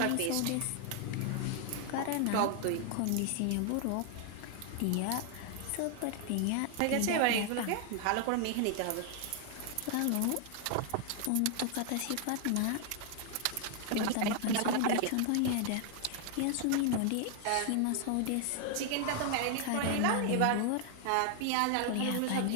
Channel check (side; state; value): both; different; correlation 0.00